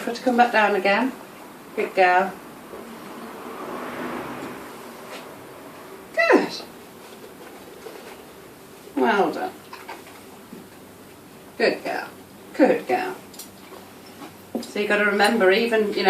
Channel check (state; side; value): identical; both; correlation 1.00